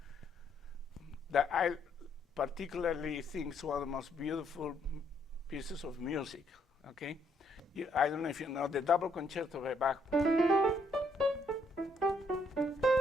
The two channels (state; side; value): normal; both; correlation 0.71